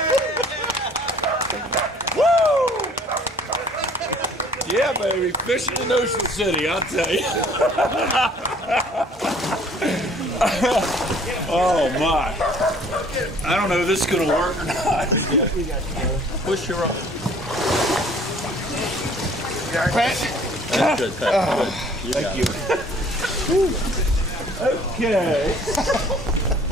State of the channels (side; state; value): both; normal; correlation 0.55